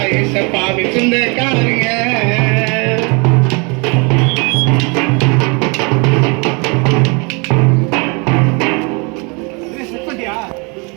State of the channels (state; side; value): quieter; left; 31.3 dB